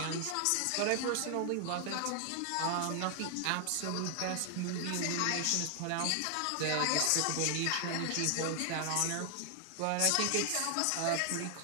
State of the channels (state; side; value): different; both; correlation 0.00